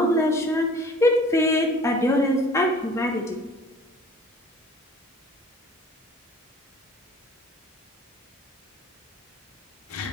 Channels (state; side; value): normal; both; correlation 0.49